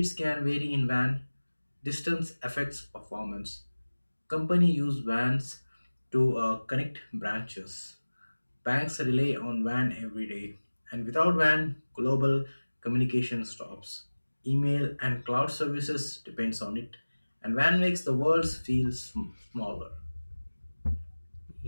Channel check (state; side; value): inverted; both; correlation -1.00